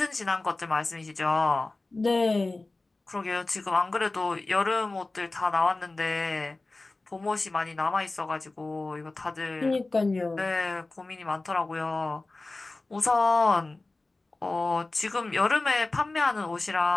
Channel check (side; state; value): right; quieter; 3.2 dB